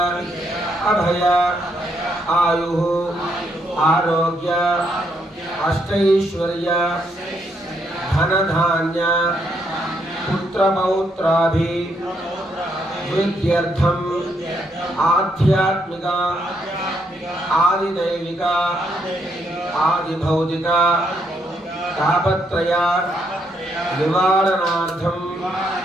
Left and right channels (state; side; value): normal; both; correlation 0.75